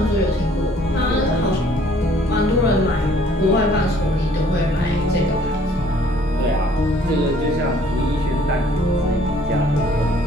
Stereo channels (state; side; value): normal; both; correlation 0.59